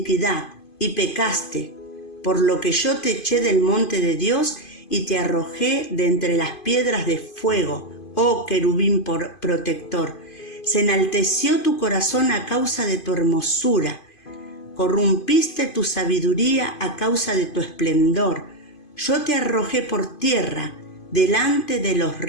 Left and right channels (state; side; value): late; right; 2.5 ms